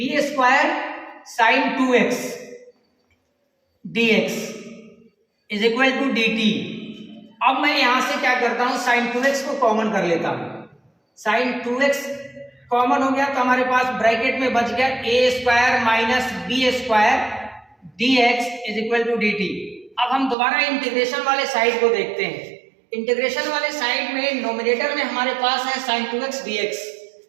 square sine 2x dx is equal to dt। अब मैं यहां से क्या करता हूं, साइन 2x को कॉमन कर लेता हूं। साइन 2x कॉमन हो गया तो हमारे पास ब्रैकेट में बच गया a square minus b square dx is equal to dt। अब हम दोबारा इंटीग्रेशन वाले साइड को देखते हैं। इंटीग्रेशन वाले साइड में नोमिनेटर में हमारे पास है sin 2x dx,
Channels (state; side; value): drops out; left; at 20.4 s